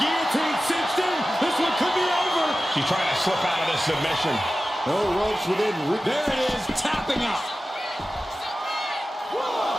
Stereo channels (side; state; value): both; normal; correlation 0.94